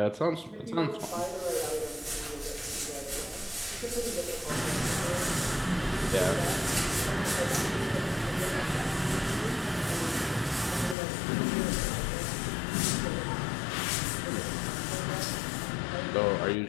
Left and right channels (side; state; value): right; drops out; at 11.0 s